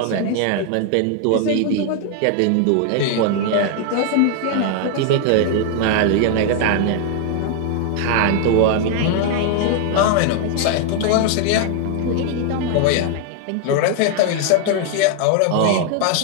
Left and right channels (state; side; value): different; both; correlation 0.00